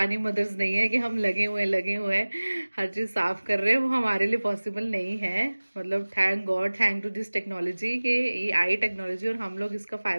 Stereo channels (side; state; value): both; inverted; correlation -1.00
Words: मदर्स नहीं है कि हम लगे हुए हैं हर चीज़ साफ़ कर रहे हैं, वो हमारे लिए पॉसिबल नहीं है। मतलब thank God, thank to this technology कि ये आई टेक्नोलॉजी और हम लोग इसका